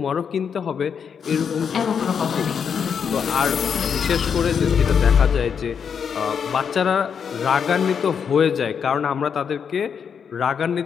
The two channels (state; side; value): quieter; right; 7.0 dB